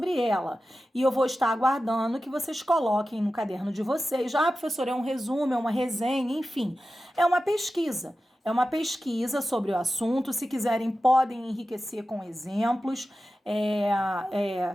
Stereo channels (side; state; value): both; normal; correlation 0.93